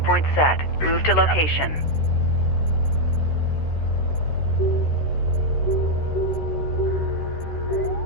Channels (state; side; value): late; right; 13 ms